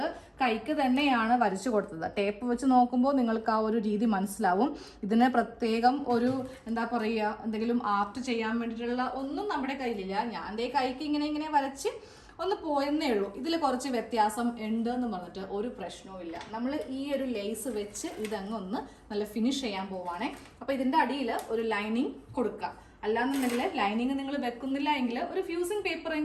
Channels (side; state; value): both; identical; correlation 1.00